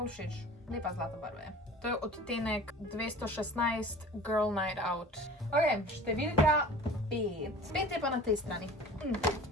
všeč, lepa zlata barva je. To je odtenek 216 Girl Night Out. Ok, številka 5. 5 je pa na tej strani.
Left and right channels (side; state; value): both; normal; correlation 0.42